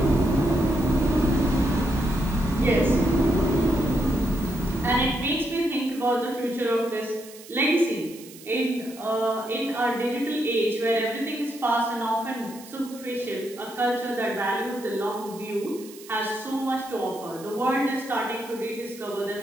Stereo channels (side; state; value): right; noise; hiss, 19 dB below the sound